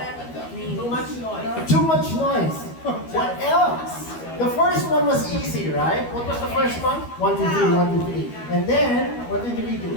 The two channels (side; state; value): right; late; 12 ms